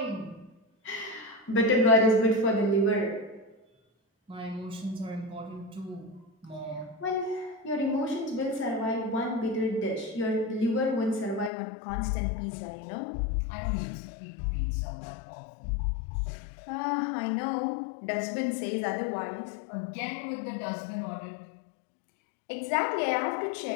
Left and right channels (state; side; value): drops out; right; at 11.5 s